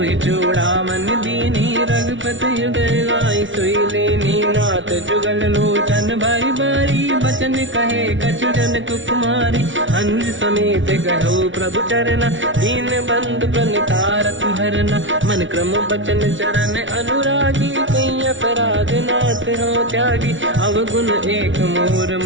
चूड़ामन दीनी रघुपति हृदय लाई सोई लेनी नाथ जुगल लोचन भाई बारी बचन कहे कछु जन कुमारी हंस समेत कहो प्रभु चरना दीन बंधु प्रणितारत हरना मन क्रम बचन चरण अनुरागी कहीं अपराध नाथ हो त्यागी अवगुण एक मोर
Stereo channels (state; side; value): late; left; 0.56 ms